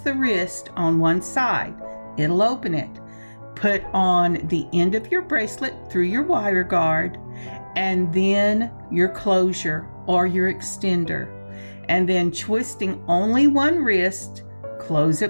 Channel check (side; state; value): both; inverted; correlation -1.00